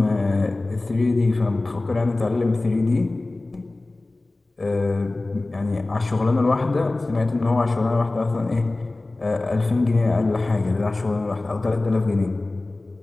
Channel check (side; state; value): right; quieter; 3.0 dB